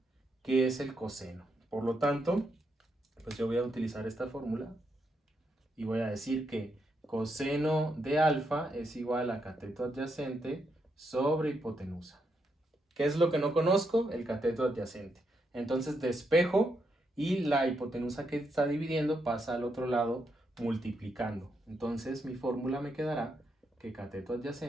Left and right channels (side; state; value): both; normal; correlation 0.80